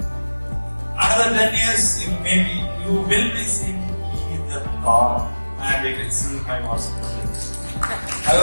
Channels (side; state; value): both; inverted; correlation -1.00